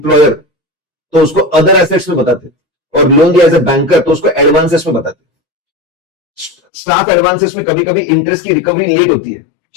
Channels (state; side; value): drops out; right; at 6.6 s